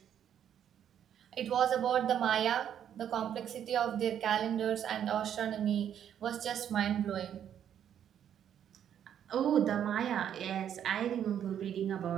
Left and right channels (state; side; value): quieter; left; 9.5 dB